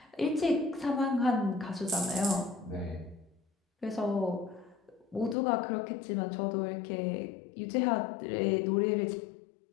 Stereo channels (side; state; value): right; drops out; at 5.4 s